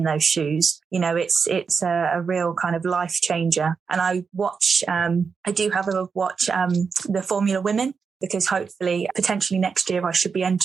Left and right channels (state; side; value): quieter; left; 5.6 dB